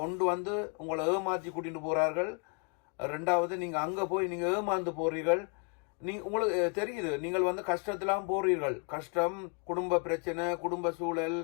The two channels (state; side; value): quieter; right; 35.8 dB